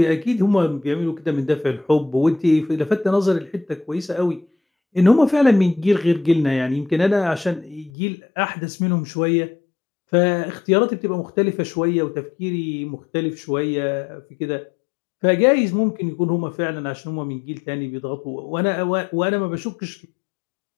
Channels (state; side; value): drops out; right; at 7.9 s